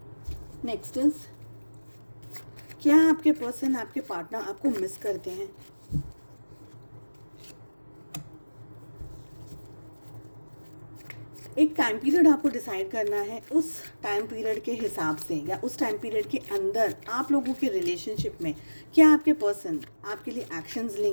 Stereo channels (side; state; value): both; inverted; correlation -1.00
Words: नेक्स्ट इज क्या आपके पर्सन, आपके पार्टनर आपको मिस करते हैं। एक टाइम पीरियड आपको डिसाइड करना है, उस टाइम पीरियड के हिसाब से या उस टाइम पीरियड के अंदर आप लोगों के रिलेशनशिप में क्या आपके पर्सन आपके लिए एक्शंस